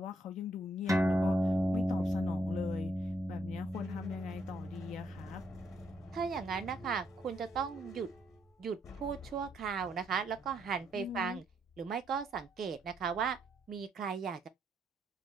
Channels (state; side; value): normal; both; correlation 0.75